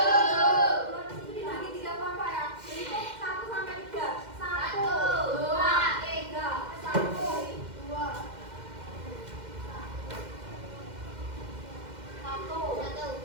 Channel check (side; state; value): left; late; 2.1 ms